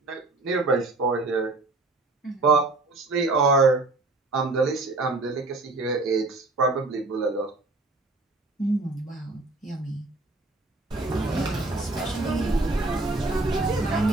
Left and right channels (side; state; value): left; quieter; 3.2 dB